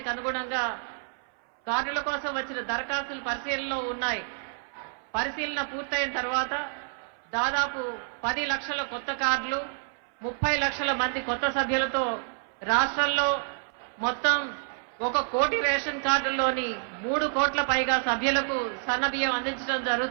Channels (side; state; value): left; silent; 59 dB below the other